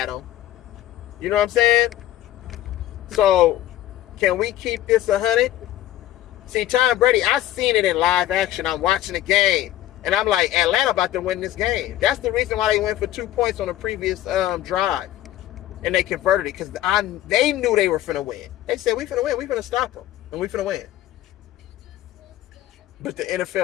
him. You know what I'm saying? So, can we keep this 100? See, Tom Brady, I seen it in live action. I'm watching the game. And I'm like, Atlanta about to win this game. That's the reason why they went for 2 points on the previous drive. And they converted it because they knew they were finna win. They said, we finna win. We finna stop them. And we finna win. But the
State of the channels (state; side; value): quieter; right; 13.7 dB